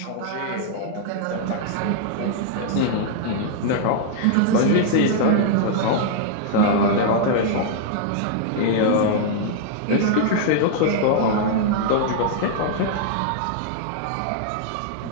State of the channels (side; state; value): both; different; correlation -0.01